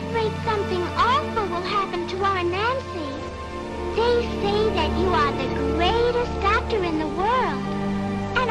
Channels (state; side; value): identical; both; correlation 1.00